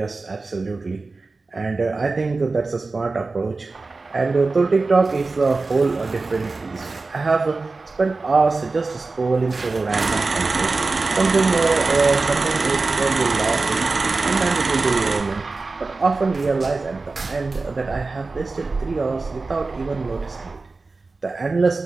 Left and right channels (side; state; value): left; quieter; 3.7 dB